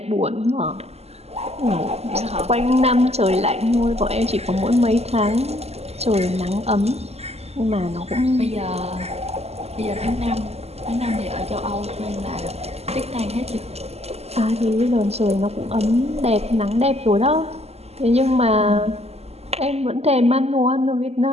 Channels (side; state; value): left; late; 0.30 ms